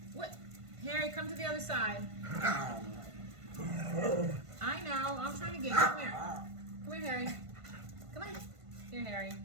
What? Harry, come to the other side. I know. I'm trying to get you. Come here. Come here, Harry. Come on. Here, Harry.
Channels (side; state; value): left; late; 1.5 ms